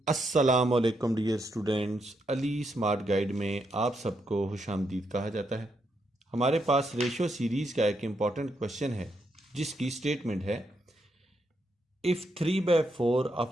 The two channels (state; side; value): normal; both; correlation 0.80